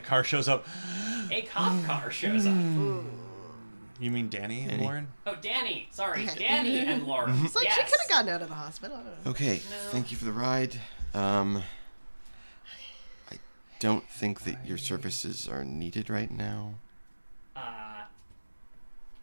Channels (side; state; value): both; inverted; correlation -1.00